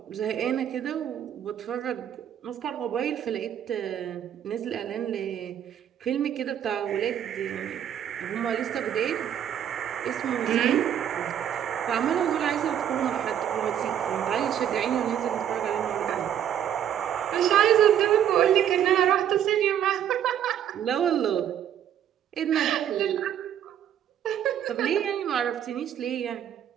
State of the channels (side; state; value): left; quieter; 9.9 dB